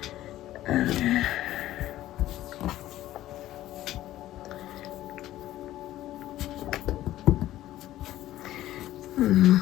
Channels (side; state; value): right; quieter; 14.4 dB